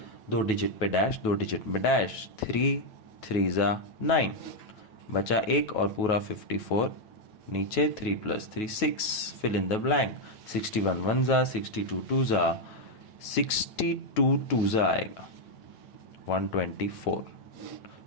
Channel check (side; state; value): right; late; 9.3 ms